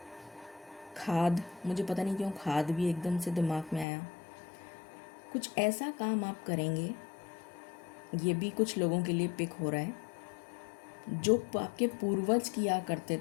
खाद, मुझे पता नहीं क्यों खाद भी एकदम से दिमाग में आया, कुछ ऐसा काम आप करेंगे, ये भी कुछ लोगों के लिए पिक हो रहा है जो आपके पूर्वज किया करते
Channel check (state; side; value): drops out; right; at 3.9 s